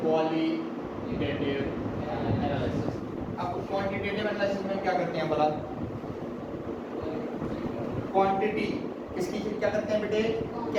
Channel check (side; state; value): both; identical; correlation 1.00